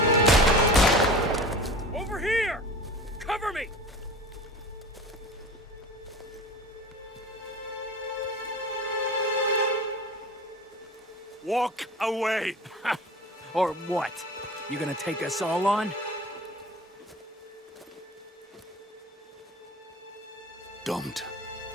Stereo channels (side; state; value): both; normal; correlation 0.38